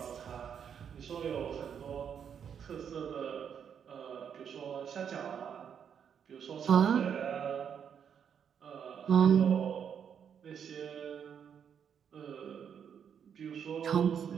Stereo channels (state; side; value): quieter; left; 7.9 dB